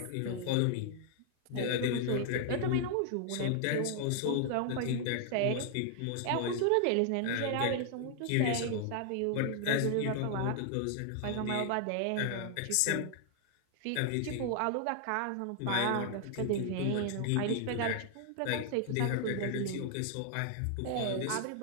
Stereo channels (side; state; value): both; different; correlation 0.00